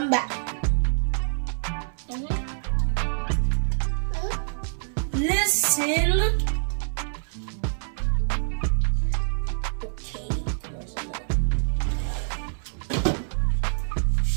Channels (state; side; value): silent; left; digital silence